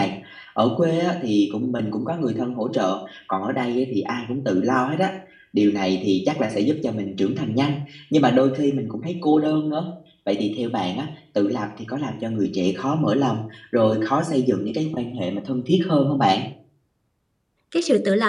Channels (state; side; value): identical; both; correlation 1.00